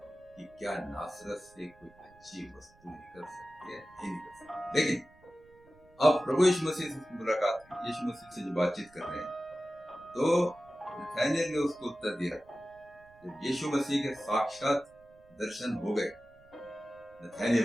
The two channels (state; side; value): noise; right; rumble, 28 dB below the sound